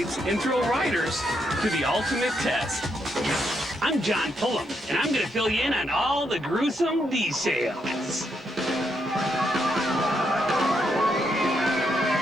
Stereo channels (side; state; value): both; normal; correlation 0.79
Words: and thrill riders to the ultimate test. I'm John Pullum, and I'm going to fill you in on all the gruesome details.